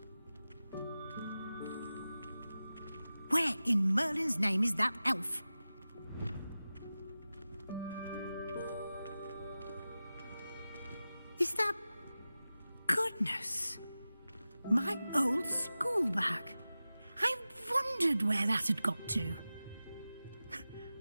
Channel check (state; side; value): inverted; both; correlation -0.95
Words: Where in Merlin's name is that elf? Is that... Goodness! My old school bag. I wondered where that had got to.